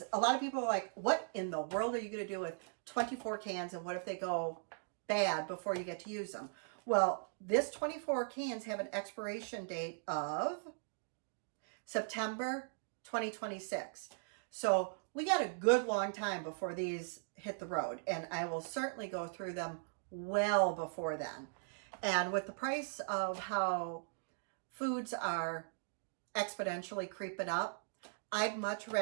a lot of people are like, what in the world are you going to do with 24 cans? And what if they go bad before you get to use them? Well, this 24 cans have an expiration date of September 2026. So we got a good long time before these hit the road. And I will certainly go through them well before then. And with the price of how foods are exponentially creeping up, I'd much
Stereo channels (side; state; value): left; silent; digital silence